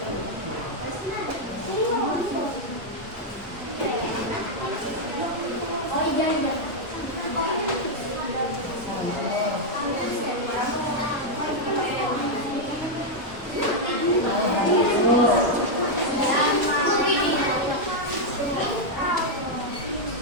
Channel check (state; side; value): normal; both; correlation -0.01